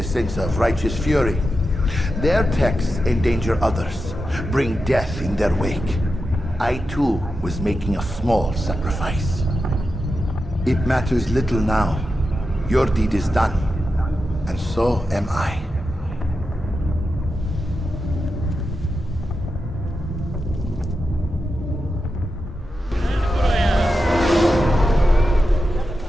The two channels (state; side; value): normal; both; correlation 0.90